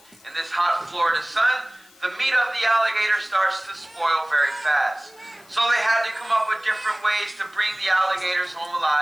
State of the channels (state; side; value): noise; left; hiss, 27 dB below the sound